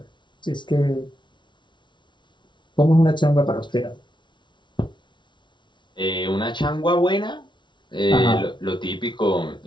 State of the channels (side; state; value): right; late; 0.23 ms